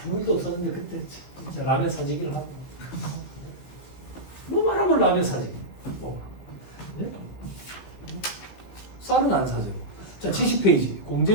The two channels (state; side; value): late; right; 15 ms